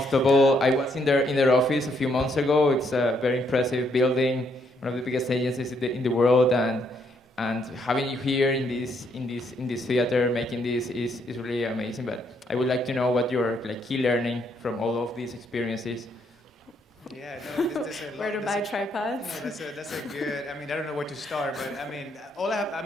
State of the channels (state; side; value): normal; both; correlation 0.73